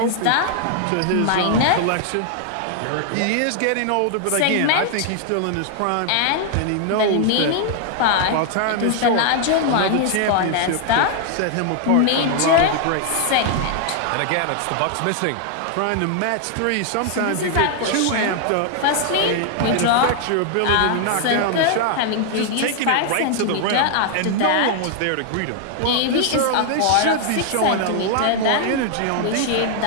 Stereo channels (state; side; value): different; both; correlation 0.00